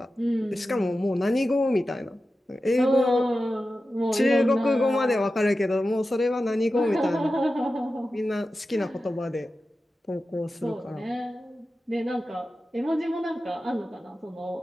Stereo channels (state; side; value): normal; both; correlation 0.93